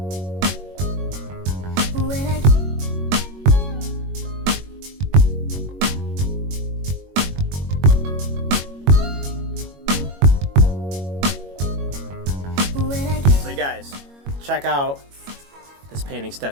So you guys, check out this painting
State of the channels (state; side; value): late; left; 21 ms